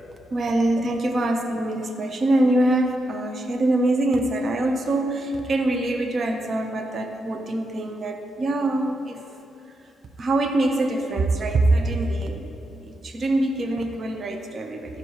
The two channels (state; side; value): normal; both; correlation 0.84